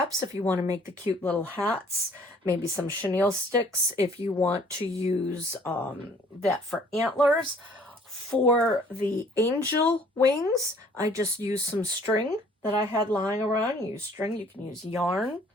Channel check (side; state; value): both; normal; correlation 0.57